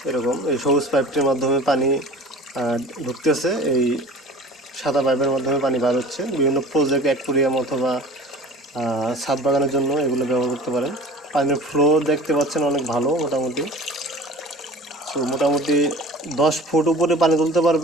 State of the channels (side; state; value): both; normal; correlation 0.40